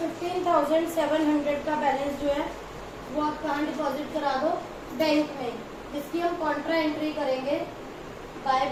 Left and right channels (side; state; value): both; identical; correlation 1.00